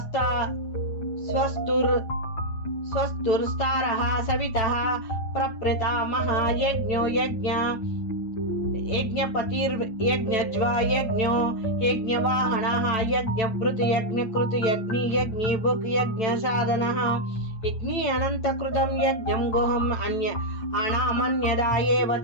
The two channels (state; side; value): late; right; 9.1 ms